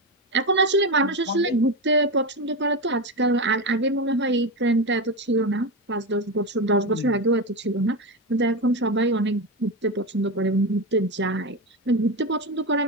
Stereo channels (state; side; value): normal; both; correlation 0.15